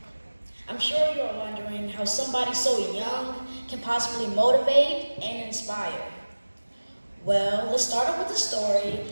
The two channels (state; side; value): inverted; both; correlation -1.00